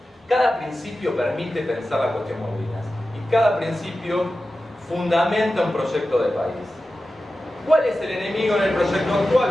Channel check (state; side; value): normal; both; correlation 0.93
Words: Cada principio permite pensar la cuestión Malvinas y cada principio fundamenta un proyecto de país. ¿Cuál es el enemigo en el proyecto actual?